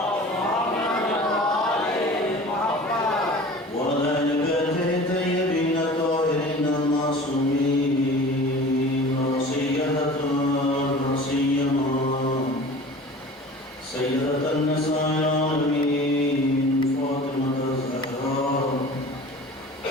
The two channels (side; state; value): both; normal; correlation 0.40